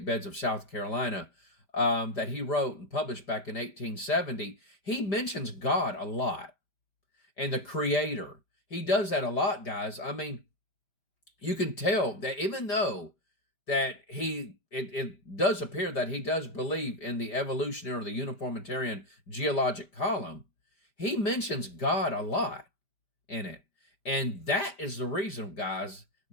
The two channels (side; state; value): right; late; 5.1 ms